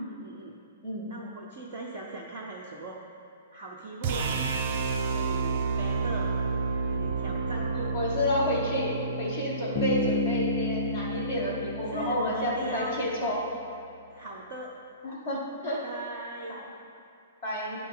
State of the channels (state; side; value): inverted; both; correlation -0.44